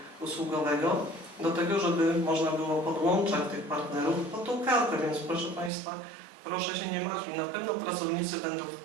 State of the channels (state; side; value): drops out; left; at 5.7 s